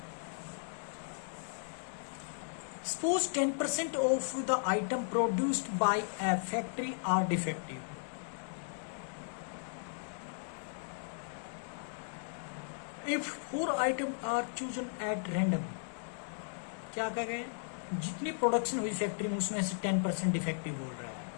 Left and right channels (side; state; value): right; silent; digital silence